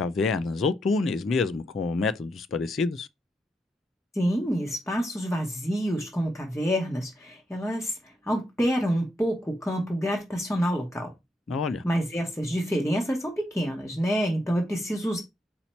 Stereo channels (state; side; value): normal; both; correlation 0.81